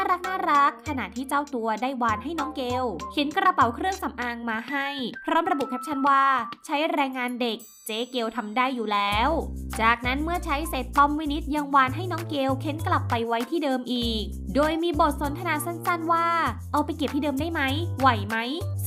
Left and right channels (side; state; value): both; identical; correlation 1.00